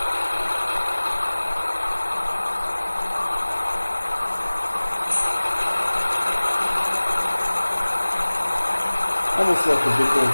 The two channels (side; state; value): both; inverted; correlation -1.00